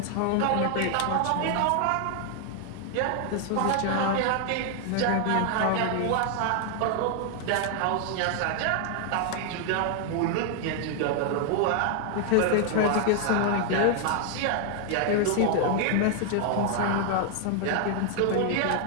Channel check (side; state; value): both; different; correlation 0.00